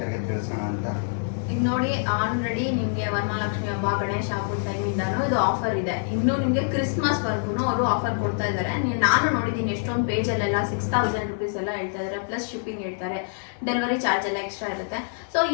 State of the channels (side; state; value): right; silent; digital silence